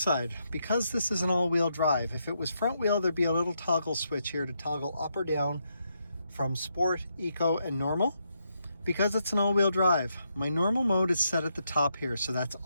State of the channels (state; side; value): inverted; both; correlation -0.80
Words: Because this is an all-wheel drive, if it was front wheel, there'd be a little toggle switch here to toggle up or down from sport, eco, and normal. Because it's an all-wheel drive, my normal mode is set at the top here, so that's